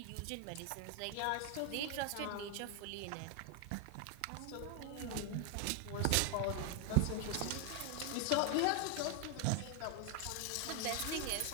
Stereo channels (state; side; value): different; both; correlation 0.00